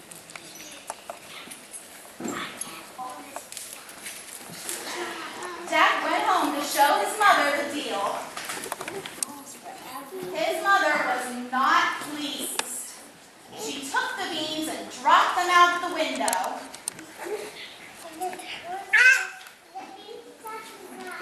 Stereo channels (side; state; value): both; identical; correlation 1.00